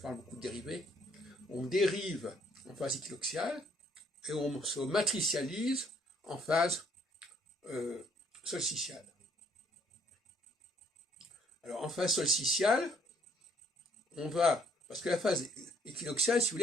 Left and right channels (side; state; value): both; normal; correlation 0.65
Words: beaucoup de dérivés, on dérive en phase équinoxiale, et on se matricialise en phase solsticiale. Alors en phase solsticiale, on va, parce que la phase équinoxiale, si vous